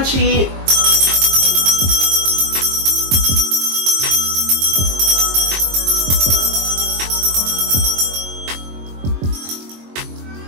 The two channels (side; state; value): left; late; 22 ms